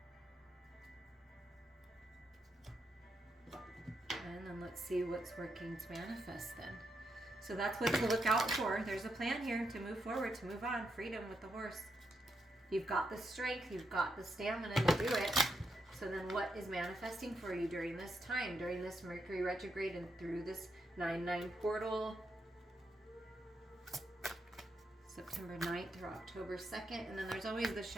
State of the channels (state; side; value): normal; both; correlation 0.81